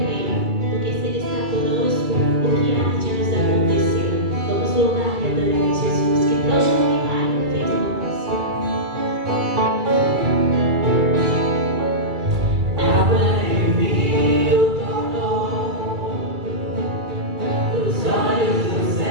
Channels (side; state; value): left; late; 2.3 ms